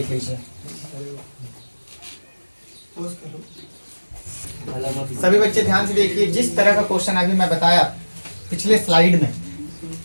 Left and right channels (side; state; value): both; inverted; correlation -1.00